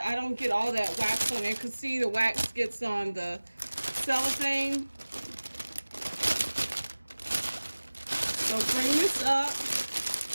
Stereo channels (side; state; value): both; inverted; correlation -1.00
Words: I don't get all that wax on it. Because see, the wax gets on the cellophane. So bring this up